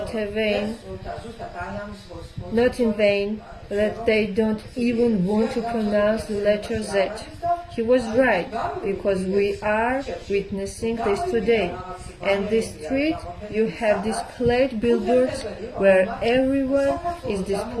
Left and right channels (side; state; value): both; identical; correlation 1.00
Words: in vain, that they don't even want to pronounce the letter Z. He was right, because we are witnessing this today. And this street, you have displayed billboards where everyone is